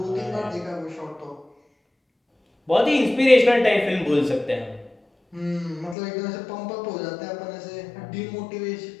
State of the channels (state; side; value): drops out; right; at 6.0 s